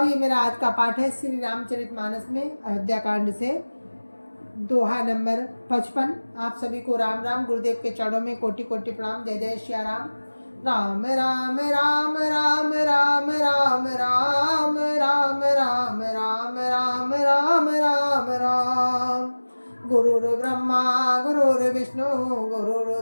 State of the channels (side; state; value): both; inverted; correlation -1.00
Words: ये मेरा आज का पाठ है श्री रामचरितमानस में अयोध्या कांड से दोहा नंबर 55। आप सभी को राम राम। गुरुदेव के चरणों में कोटि कोटि प्रणाम। जय जय श्री राम। राम राम राम राम राम राम राम राम राम राम राम राम राम राम। गुरुर्ब्रह्मा गुरुर्विष्णु